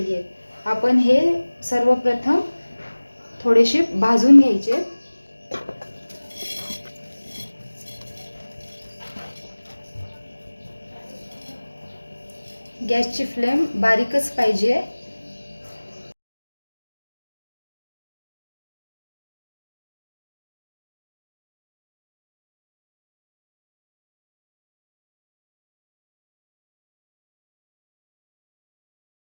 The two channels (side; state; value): both; inverted; correlation -1.00